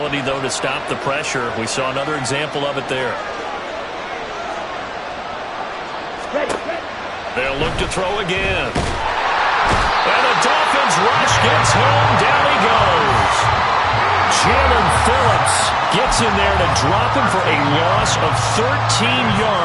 though, to stop the pressure. We saw another example of it there. Ready. They'll look to throw again. And the Dolphins rush gets home. Down he goes. Jalen Phillips gets in there to drop him for a loss of 13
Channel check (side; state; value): both; identical; correlation 1.00